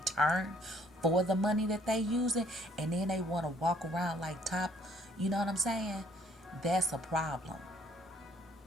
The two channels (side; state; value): both; normal; correlation 0.63